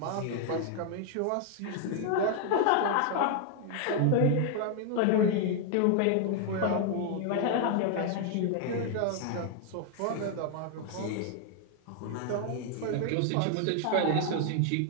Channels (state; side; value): different; both; correlation 0.00